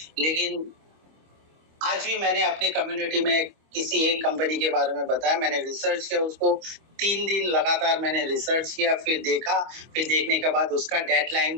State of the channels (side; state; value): left; late; 25 ms